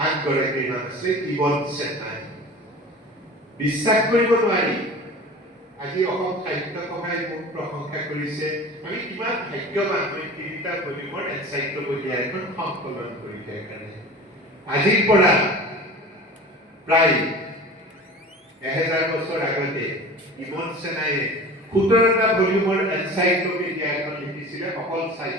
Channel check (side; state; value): both; normal; correlation 0.38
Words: আনগৰাকীৰ নাম আছিলে ইবন চেন্নাই বিশ্বাস কৰিব নোৱাৰি আজি অসম সাহিত্য সভাই মোক প্ৰশংসা কৰিছে আমি কিমান ভাগ্যৱান মই 3টা ভলিউমৰ এনচাইক্লোপিডিয়া এখন সংকলন কৰি দিয়াৰ কাৰণে আজিৰ পৰা প্ৰায় 1000 বছৰ আগতে ইবন চেন্নাইয়ে 17টা ভলিউমৰ এনচাইক্লোপিডিয়া এখন লিখিছিলে অকল